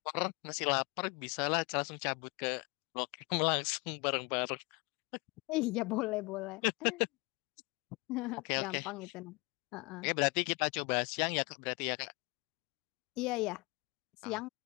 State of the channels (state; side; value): quieter; right; 27.3 dB